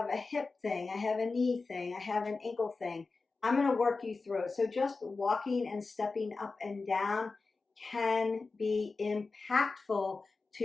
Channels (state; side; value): quieter; right; 4.0 dB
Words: a hip thing, I have a knee thing, I have an ankle thing. I'm going to work you through it. So just walking and stepping up and down can be impactful to